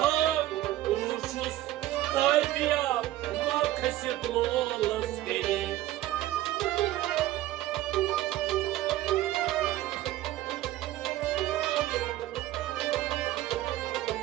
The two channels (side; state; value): left; quieter; 14.8 dB